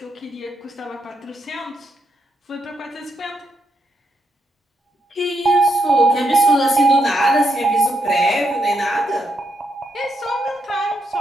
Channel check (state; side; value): normal; both; correlation 0.79